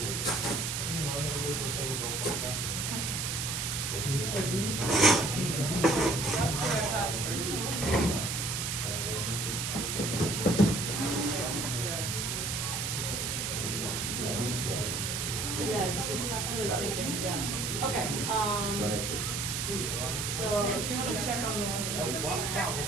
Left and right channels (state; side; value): noise; right; hiss, 1 dB below the sound